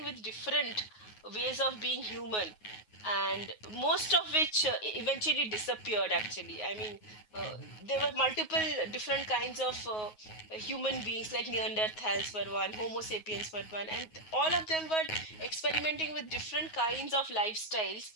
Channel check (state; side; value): late; right; 9.4 ms